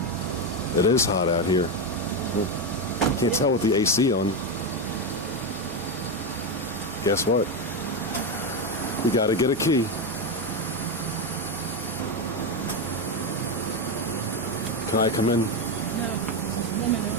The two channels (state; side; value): normal; both; correlation 0.11